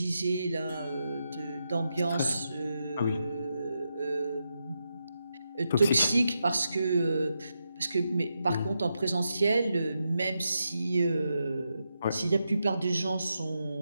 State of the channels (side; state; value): both; inverted; correlation -0.85